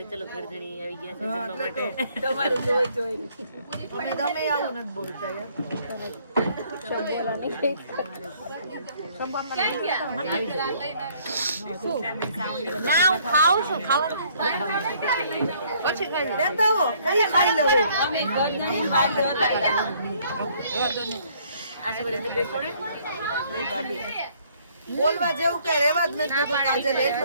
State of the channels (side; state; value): both; inverted; correlation -0.62